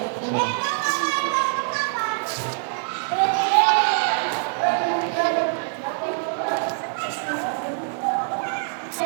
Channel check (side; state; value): left; silent; digital silence